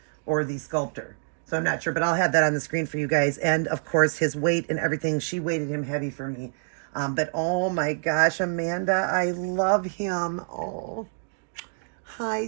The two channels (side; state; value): left; silent; digital silence